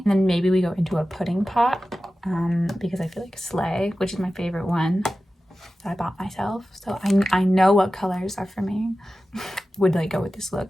And then maybe we go into a pudding pot because I feel like Slay, which is my favorite one that I bought myself. So I know what colors are for me. Would like go with this look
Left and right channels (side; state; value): both; normal; correlation 0.94